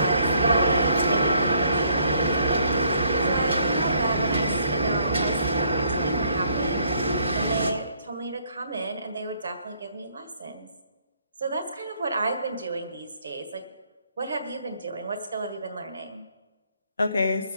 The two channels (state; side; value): inverted; both; correlation -0.67